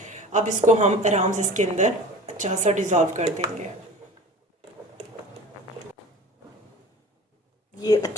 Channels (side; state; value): both; normal; correlation 0.39